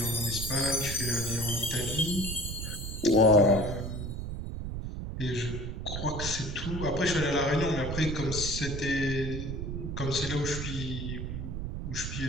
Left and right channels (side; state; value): right; noise; rumble, 5 dB below the sound